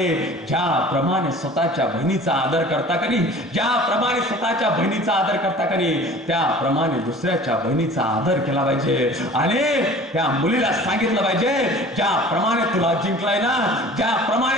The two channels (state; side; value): normal; both; correlation 0.44